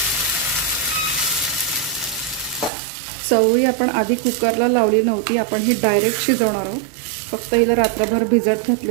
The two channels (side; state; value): left; drops out; at 2.7 s